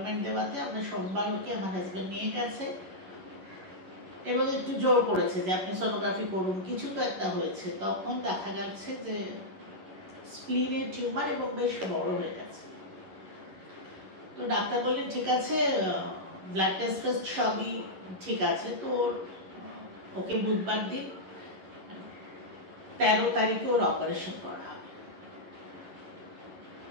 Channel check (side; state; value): left; late; 11 ms